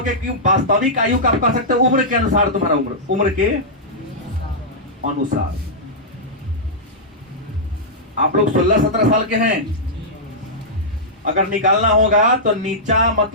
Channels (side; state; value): both; normal; correlation -0.11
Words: कि वास्तविक आयु का आप कह सकते हो उम्र के अनुसार, तुम्हारा उम्र के अनुसार। आप लोग 16-17 साल के हैं अगर निकालना होगा तो नीचा